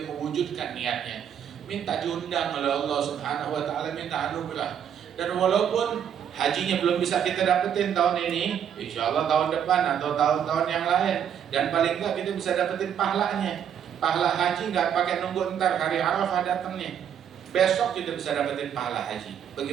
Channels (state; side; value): quieter; left; 8.8 dB